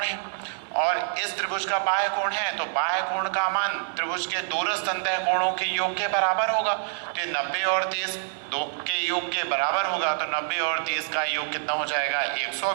है और इस त्रिभुज का बाह्य कोण है, तो बाह्य कोण का मान त्रिभुज के दूरस्थ अंतः कोणों के योग के बराबर होगा। तो 90 और 30 दो के योग के बराबर होगा, तो 90 और 30 का योग कितना हो जाएगा?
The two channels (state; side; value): silent; left; digital silence